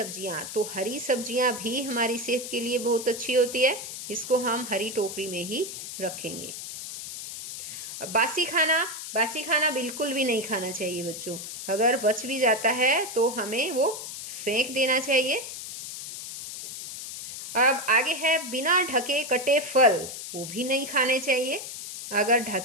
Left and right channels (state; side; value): noise; left; hiss, 9 dB below the sound